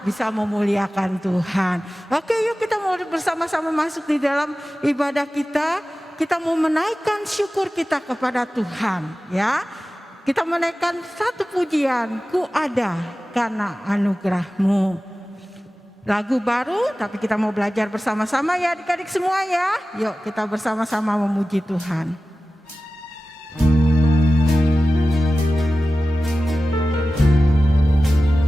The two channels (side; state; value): both; normal; correlation 0.96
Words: bisa memuliakan Tuhan. Oke, yuk kita mau bersama-sama masuk di dalam ibadah kita. Kita mau menaikkan syukur kita kepada Tuhan ya. Kita menaikkan satu pujian, ku ada karena anugerah-Mu. Lagu baru, tapi kita mau belajar bersama-sama ya adik-adik semua ya. Yuk kita bersama-sama memuji Tuhan.